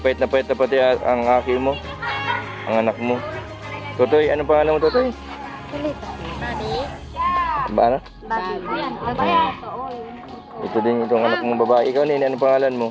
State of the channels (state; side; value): identical; both; correlation 1.00